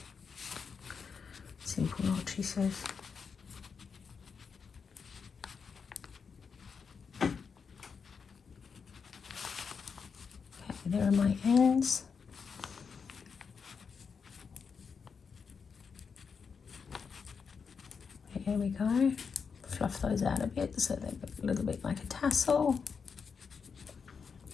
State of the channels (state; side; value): quieter; right; 5.8 dB